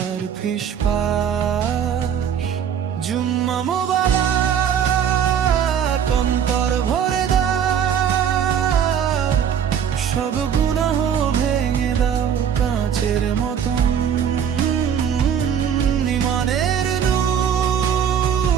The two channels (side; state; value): left; quieter; 8.4 dB